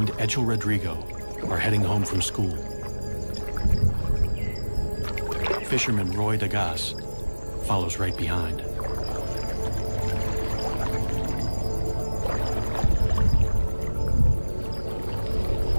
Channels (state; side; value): inverted; both; correlation -1.00